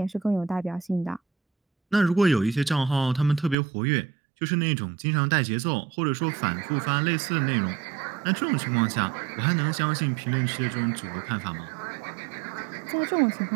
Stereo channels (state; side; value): drops out; left; at 3.6 s